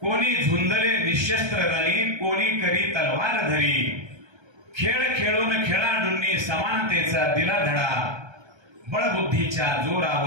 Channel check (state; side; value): late; left; 1.3 ms